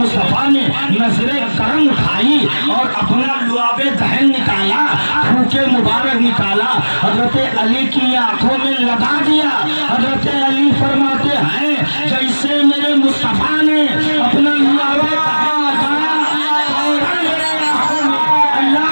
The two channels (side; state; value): both; inverted; correlation -1.00